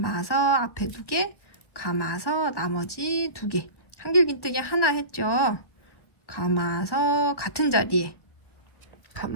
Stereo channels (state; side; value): late; right; 1.5 ms